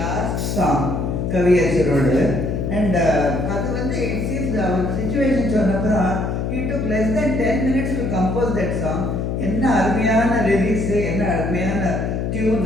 சாங் கவியரசரோடு. அண்ட் அது வந்து இட் சீம்ஸ் அவர் சுச்சுவேஷன் சொன்னப்புறம் he took less than 10 minutes to compose that song. என்ன அருமையான லிரிக்ஸு, என்ன அருமையான டியூன்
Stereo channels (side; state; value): left; noise; hum, 1 dB below the sound